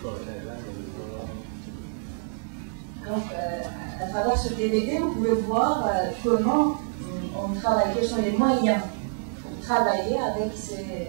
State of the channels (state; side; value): silent; left; digital silence